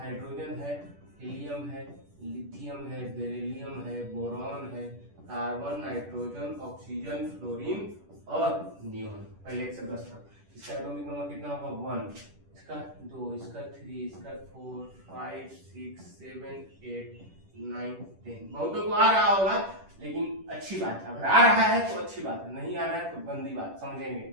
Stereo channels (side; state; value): left; late; 10 ms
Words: है, हीलियम है, लिथियम है, बेरिलियम है, बोरॉन है, कार्बन, नाइट्रोजन, ऑक्सीजन, फ्लोरीन और नियोन। पहले 1 से 10 तक। इसका एटॉमिक नंबर कितना होगा, 1, इसका 2, इसका 3, इसका 4, 5, 6, 7, 8, 9 10। बहुतों को आ रहा होगा, लेकिन अच्छी बात है, अगर आ रहा है तो अच्छी बात है, नहीं आ रहा है तो गंदी बात, समझेंगे,